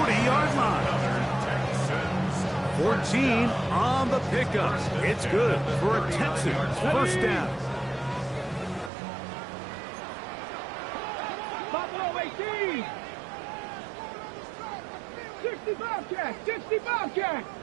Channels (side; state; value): left; drops out; at 8.9 s